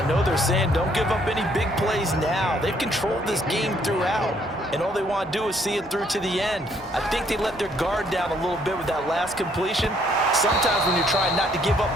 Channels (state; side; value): normal; both; correlation 0.67